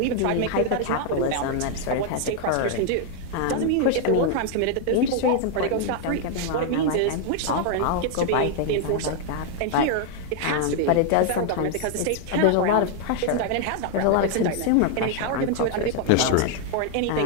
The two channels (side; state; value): both; different; correlation 0.00